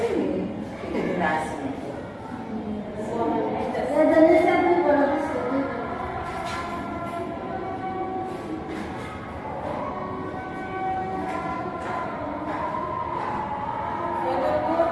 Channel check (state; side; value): identical; both; correlation 1.00